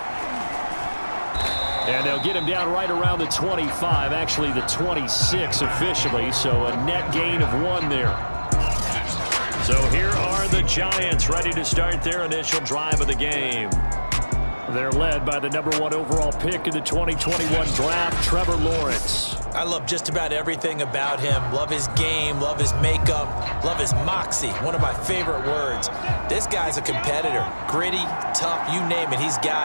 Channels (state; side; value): inverted; both; correlation -1.00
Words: And they'll get him down right around the 25, actually the 26 officially, so a net gain of 1 there. So here are the Giants ready to start their initial drive of the game. They're led by the #1 overall pick in the 2021 draft, Trevor Lawrence. I love just about everything about him. Love his game, love his makeup, love his moxie. One of my favorite words. This guy's a competitor. Gritty, tough, you name it, he's